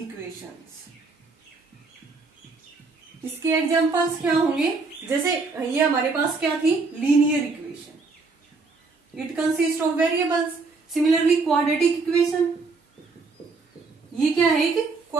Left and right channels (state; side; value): quieter; left; 4.1 dB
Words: इसके एग्जाम्पल्स क्या होंगे? जैसे ये हमारे पास क्या थी? Linear equation. It consist of variables. Similarly quadratic equation, ये क्या है? एक